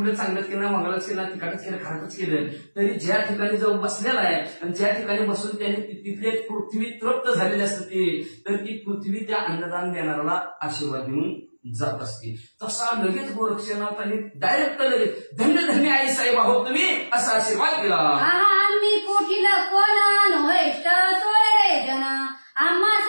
चांगलंच केलं मंगळच केलं तिखटच केलं खारटच केलं तरी ज्या ठिकाणी जाऊन बसलेला आहे आणि ज्या ठिकाणी बसून त्याने तिथले पृथ्वी तृप्त झालेली असते तर ती पृथ्वी त्या अन्नदान देणाऱ्याला आशीर्वाद देऊन जात असते. तसा लगेच गोरक्षनाथाने डायरेक्ट लगेच धन्य धन्य आई साहेब आहोत तुम्ही असा आशीर्वाद दिला. आम्ही पोटील कोण नोहेष्ट सोयरे जन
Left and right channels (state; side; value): inverted; both; correlation -1.00